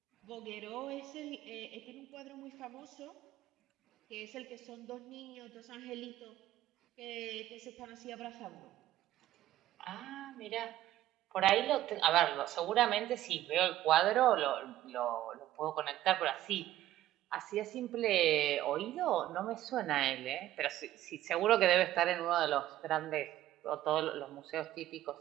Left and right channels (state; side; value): quieter; left; 13.8 dB